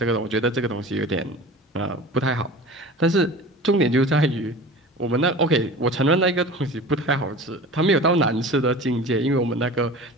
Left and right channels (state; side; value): normal; both; correlation 0.38